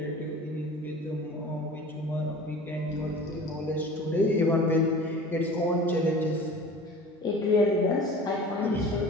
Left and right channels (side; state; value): both; normal; correlation 0.40